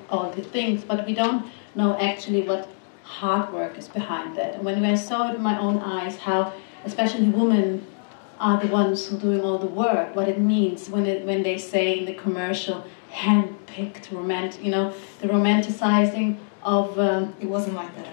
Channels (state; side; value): silent; right; digital silence